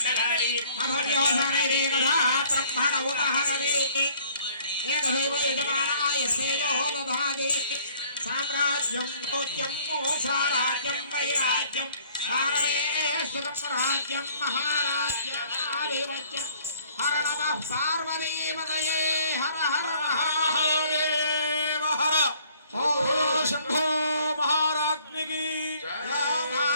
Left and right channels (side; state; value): both; inverted; correlation -0.58